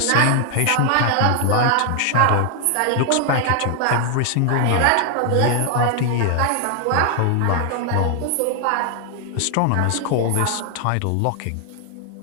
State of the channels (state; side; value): different; both; correlation 0.00